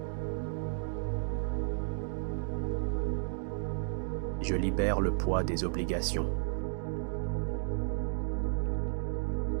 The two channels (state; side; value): silent; left; digital silence